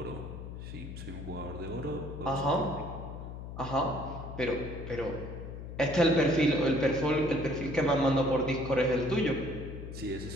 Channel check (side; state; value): left; noise; hum, 9 dB below the sound